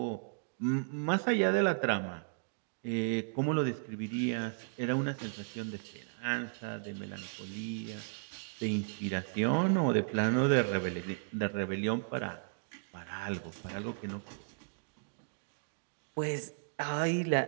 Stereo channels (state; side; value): silent; left; digital silence